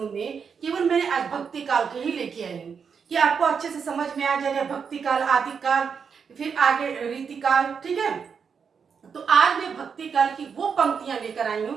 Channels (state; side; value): quieter; left; 6.4 dB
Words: में केवल मैंने आज भक्ति काल के ही लेके आई हूँ कि आपको अच्छे से समझ में आ जाएगा भक्ति काल, आदि काल, फिर आगे रीति काल। ठीक है, तो आज मैं भक्ति काल की वो पंक्तियां लेकर आई